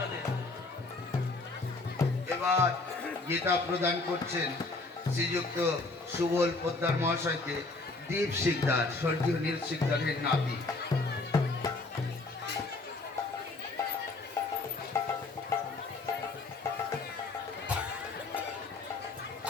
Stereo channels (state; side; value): quieter; right; 3.5 dB